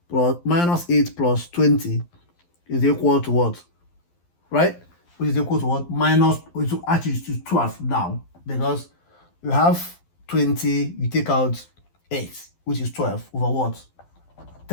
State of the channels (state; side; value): late; right; 12 ms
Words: plus minus 8 plus 20 is equal to what? Right? Which is equal to what? Minus, which actually is 12 now, because you have 20, you take out 8, which is 12 over what?